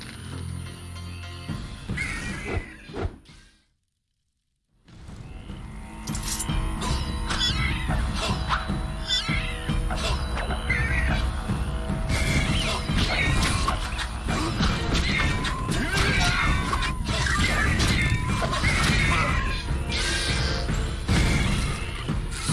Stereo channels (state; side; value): identical; both; correlation 1.00